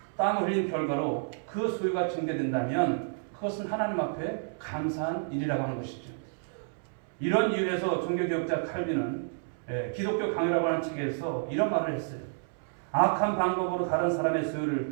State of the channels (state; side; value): silent; left; 58 dB below the other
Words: 땀을 흘린 결과로 그 소유가 증대된다면 그것은 하나님 앞에 감사한 일이라고 하는 것이죠. 이런 이유에서 종교개혁자 칼빈은 기독교 강요라고 하는 책에서 이런 말을 했어요. 악한 방법으로 다른 사람의 소유를